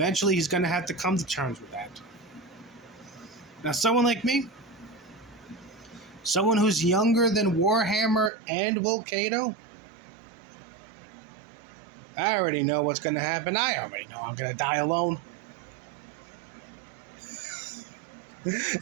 he's going to have to come to terms with that. Now, someone like me, someone who's younger than Warhammer and Will Cato, I already know what's going to happen. I already know I'm going to die alone.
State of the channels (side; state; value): left; drops out; at 8.3 s